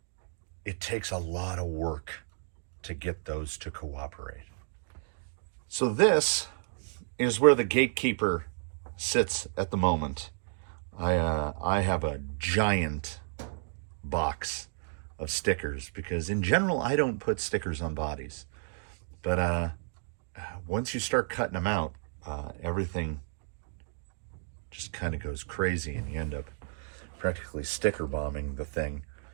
it takes a lot of work to get those to cooperate. So this is where the gatekeeper sits at the moment. I have a giant box of stickers, because in general I don't put stickers on bodies. But once you start cutting them out, everything just kind of goes crazy, and you end up practically sticker bombing the thing.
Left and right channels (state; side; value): silent; left; digital silence